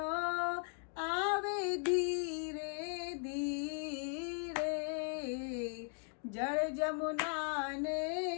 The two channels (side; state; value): right; silent; 52 dB below the other